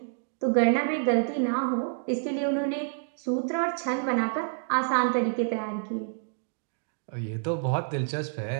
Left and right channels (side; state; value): left; silent; digital silence